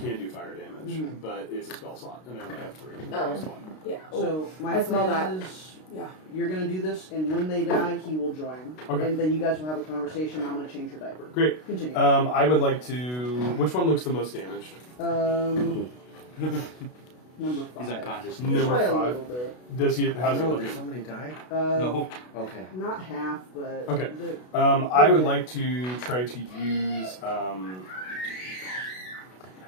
do fire damage, but it's a spell slot, and I only have 3. Oh. That's one. Yeah. So my I smell plan that. is Yeah. you're gonna do this, and when they die, he will join. Okay. And then you guys will have a conversation. I'm gonna change your diaper. Great. Continue. I would like to. Which one looks the most damaged? Number 5. He's unconscious. Just Number by a 5. little bit. Does he? How's he No, looking? did somebody die? No. Okay. Not half, but Okay. the- I would like to try to use.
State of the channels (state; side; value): late; right; 32 ms